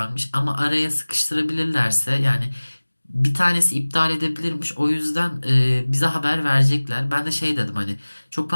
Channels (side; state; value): both; inverted; correlation -1.00